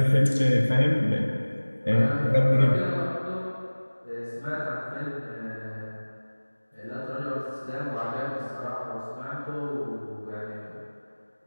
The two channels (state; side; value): inverted; both; correlation -1.00